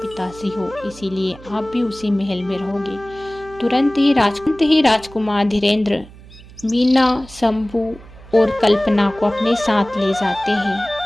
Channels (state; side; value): noise; right; hum, 20 dB below the sound